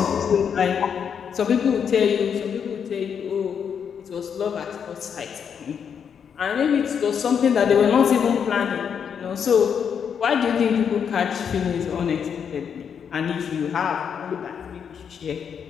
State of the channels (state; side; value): quieter; right; 7.4 dB